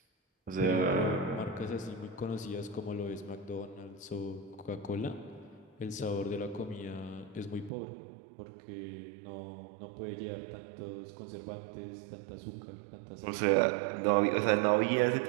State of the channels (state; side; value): drops out; left; at 7.7 s